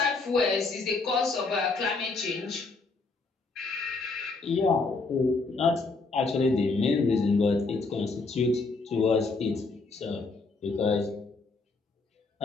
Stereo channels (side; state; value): right; quieter; 3.8 dB